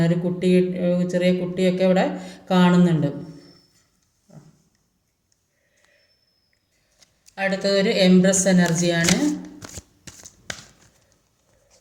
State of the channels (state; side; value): identical; both; correlation 1.00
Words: ഒരു ചെറിയ കുട്ടിയൊക്കെ ഇവിടെ കാണുന്നുണ്ട്. അടുത്തതൊരു എംപ്രസ് എനർജിയാണ്.